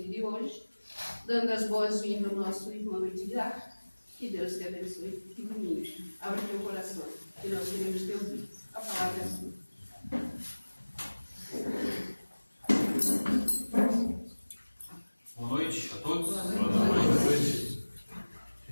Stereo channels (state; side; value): inverted; both; correlation -1.00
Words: de hoje, dando as boas-vindas ao nosso irmão Edgar. Que Deus te abençoe e ilumine. Abre teu coração, que nós queremos te ouvir. A palavra é sua. Boa noite a todos. Boa noite.